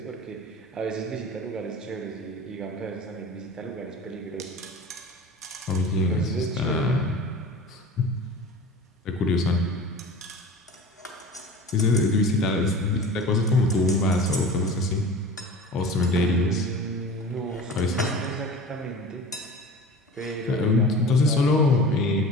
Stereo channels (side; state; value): both; normal; correlation 0.37